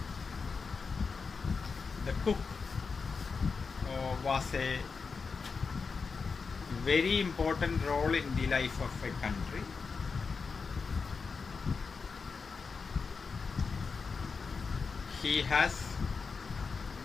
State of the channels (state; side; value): quieter; right; 5.0 dB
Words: the cook was a very important role in the life of a country. He has